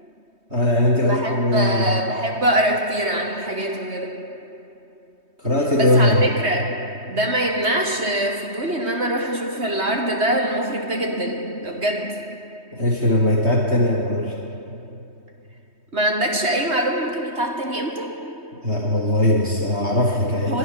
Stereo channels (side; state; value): left; late; 3.2 ms